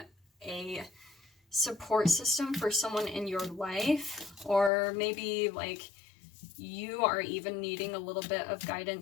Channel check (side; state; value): right; drops out; at 4.7 s